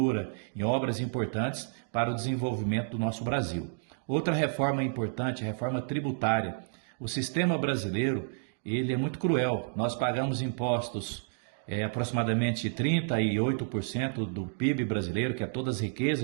em obras importantes para o desenvolvimento do nosso Brasil. Outra reforma importante, a reforma tributária. O sistema brasileiro, ele é muito cruel. Nós pagamos impostos aproximadamente 38% do PIB brasileiro, que é todas as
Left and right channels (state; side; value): silent; left; digital silence